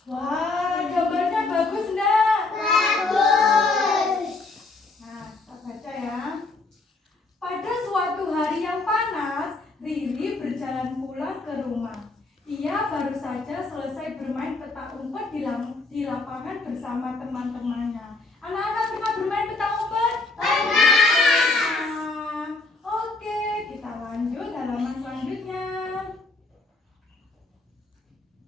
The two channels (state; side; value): quieter; right; 3.4 dB